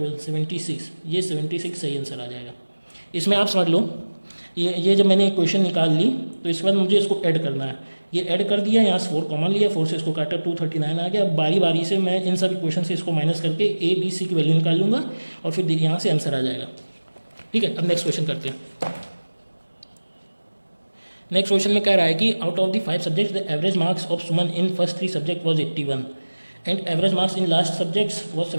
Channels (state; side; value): inverted; both; correlation -1.00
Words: 76। ये 76 सही आंसर आ जाएगा। इसमें आप समझ लो, ये जब मैंने क्वेश्चन निकाल ली तो इसके बाद मुझे इसको ऐड करना है। ये ऐड कर दिया, यहाँ से 4 कॉमन लिया, 4 से इसको काटा, 239 आ गया। अब बारी बारी से मैं इन सभी क्वेश्चन से इसको माइनस करके ए बी सी की वैल्यू निकाल लूँगा और फिर यहाँ से आंसर आ जाएगा। ठीक है, अब नेक्स्ट क्वेश्चन करते हैं। नेक्स्ट क्वेश्चन में कह रहा है कि out of the 5 subjects the average marks of Suman in first 3 subject was 81 and average marks in last subjects was